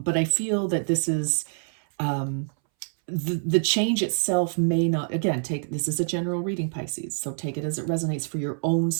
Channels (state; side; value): silent; left; 61 dB below the other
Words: I feel that this is the change itself may not, again, take this is a general reading, Pisces, so take it as it resonates for your own